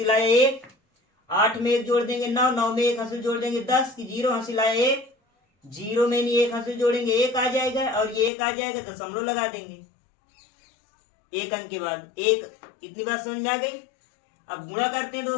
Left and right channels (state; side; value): drops out; right; at 8.3 s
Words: लाए 1, 8 में 1 जोड़ देंगे 9, 9 में 1 हंसी जोड़ देंगे 10 की 0 हंसी लाए 1, 0 में नहीं 1 हंसी जोड़ेंगे 1 आ जाएगा और ये 1 आ जाएगा दशमलव लगा देंगे 1 अंक के बाद 1। इतनी बात समझ में आ गई। अब गुणा करते हैं